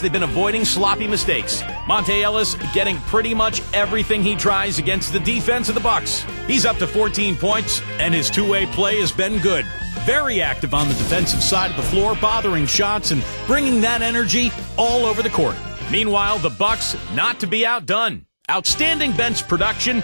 been avoiding sloppy mistakes. Monte Ellis getting pretty much everything he tries against the defense of the Bucks. He's up to 14 points, and his two-way play has been good. Very active on the defensive side of the floor, bothering shots and bringing that energy all over the court. Meanwhile, the Bucks not to be outdone. Outstanding bench production.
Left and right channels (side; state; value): both; inverted; correlation -1.00